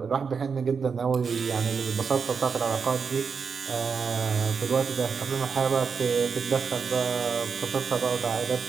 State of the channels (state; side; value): quieter; left; 5.8 dB